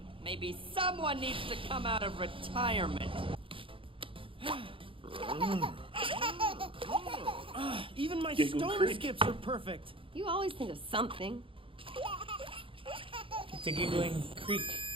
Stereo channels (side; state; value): left; late; 0.25 ms